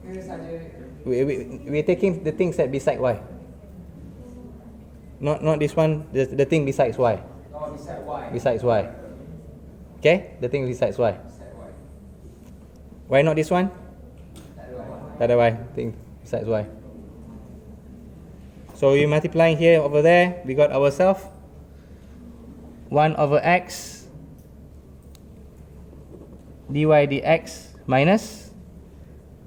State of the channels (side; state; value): both; identical; correlation 1.00